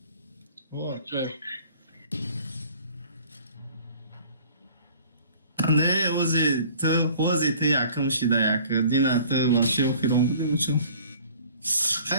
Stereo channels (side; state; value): both; inverted; correlation -0.51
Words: O acayip. Ne ozi te yakın şida yakın. Dina te vaşı okuyorum bu değil mi?